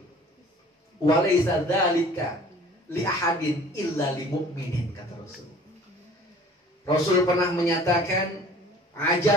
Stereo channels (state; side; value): normal; both; correlation 0.49